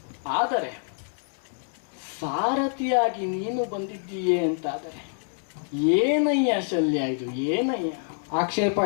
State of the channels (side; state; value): right; silent; digital silence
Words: ಆದರೆ ಸಾರಥಿಯಾಗಿ ನೀನು ಬಂದಿದ್ದೀಯೇ ಅಂತಾದರೆ ಏನಯ್ಯ ಶಲ್ಯ, ಇದು ಏನಯ್ಯ? ಆಕ್ಷೇಪ